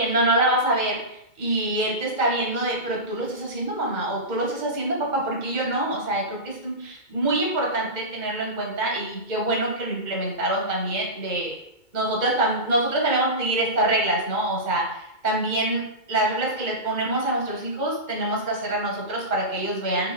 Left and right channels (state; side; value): late; right; 2.2 ms